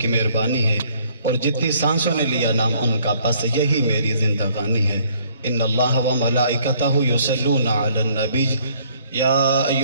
مہربانی ہے اور جتنی سانسوں نے لیا نام ان کا بس یہی میری زندگانی ہے ان اللہ و ملائکتہ یصلون علی النبی یا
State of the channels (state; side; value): inverted; both; correlation -0.62